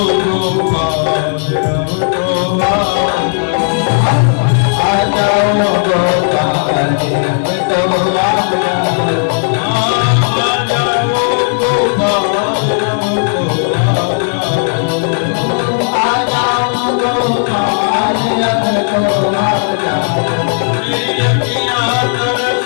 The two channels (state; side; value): silent; right; 72 dB below the other